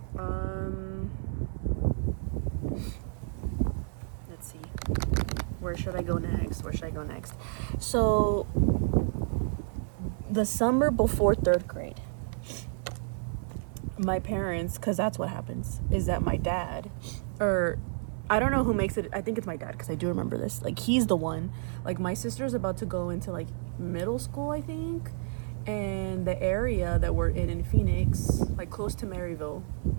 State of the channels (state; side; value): silent; left; digital silence